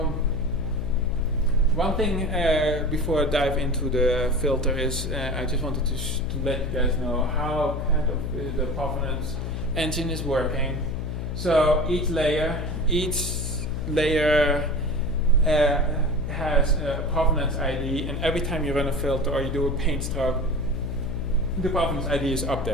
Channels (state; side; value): noise; left; hum, 4 dB below the sound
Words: one thing before I dive into the filter is I just wanted to let you guys know how kind of the provenance engine is working. So each layer has a provenance ID, and every time you run a filter or you do a paint stroke, the provenance ID is